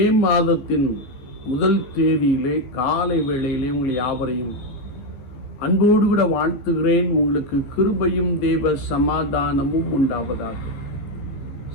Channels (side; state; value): right; late; 15 ms